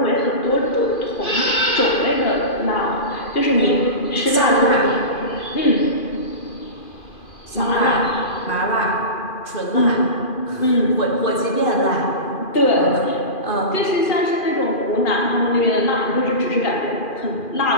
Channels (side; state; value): right; late; 2.4 ms